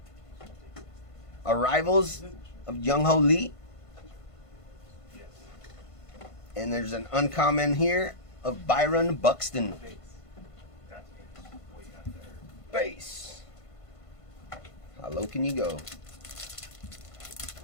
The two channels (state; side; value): late; right; 1.5 ms